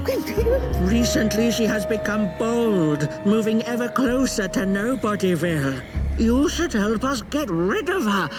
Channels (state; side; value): identical; both; correlation 1.00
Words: Recently she has become bold, moving ever closer to Nobodyville. You should help us get rid of her.